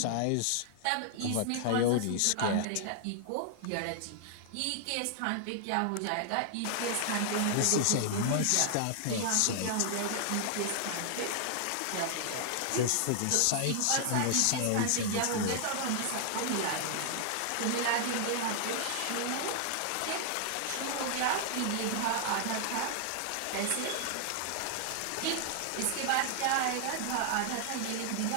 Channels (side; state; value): both; different; correlation 0.00